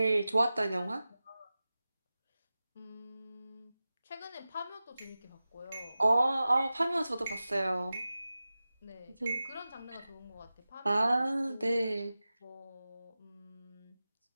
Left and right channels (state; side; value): inverted; both; correlation -0.95